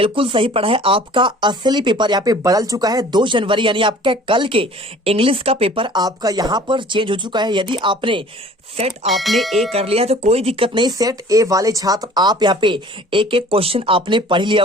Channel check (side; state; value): both; normal; correlation 0.49